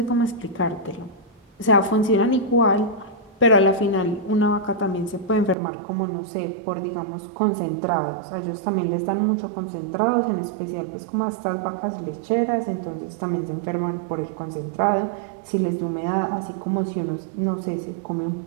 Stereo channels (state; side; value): drops out; left; at 5.6 s